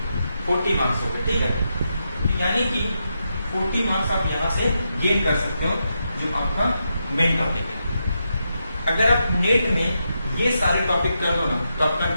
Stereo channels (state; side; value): inverted; both; correlation -0.85